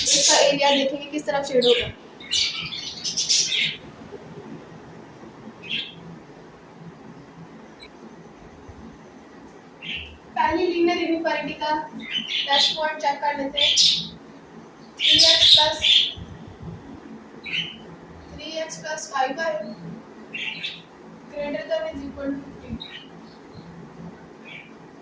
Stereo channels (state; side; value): identical; both; correlation 1.00